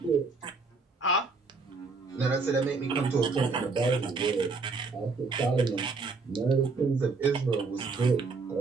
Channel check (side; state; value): left; quieter; 4.1 dB